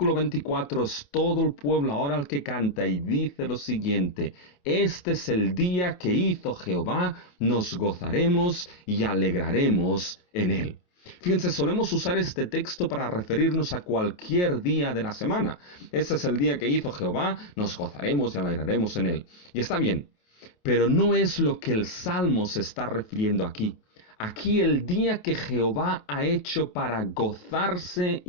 24 es todo el pueblo ahora el que canta y dice lo siguiente: este es el día que hizo Jehová, nos gozaremos y alegraremos en él. Fíjense, solemos usar este texto para referirnos a cualquier día de la semana. Este es el día que hizo Jehová, nos gozaremos y alegraremos en él. Y está bien, pero no es lo que el Salmo se está refiriendo aquí. Aquí el día que Jehová ha hecho para gozarse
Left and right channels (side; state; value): right; late; 28 ms